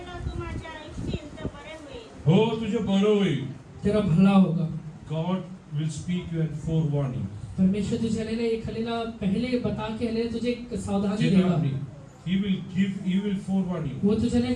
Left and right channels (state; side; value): identical; both; correlation 1.00